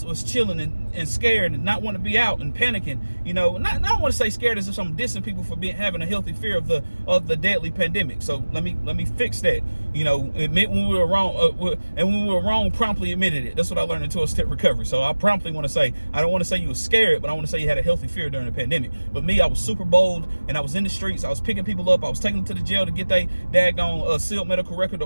chilling and scared and not want to be out and panicking. I don't want to say scared as if I'm dissing people for having a healthy fear of the deadly pandemic. So let me fix that. Admit when we were wrong, and when we were wrong, promptly admitted it. That's what I learned in 12-step recovery. So I promptly want to say, I don't want to say you were scared, but I want to say you had a healthy fear during the pandemic. But me, I was super bold, and I was in the streets. I was picking people up. I was taking them to the jail to get their daggone sealed medical record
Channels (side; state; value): both; inverted; correlation -1.00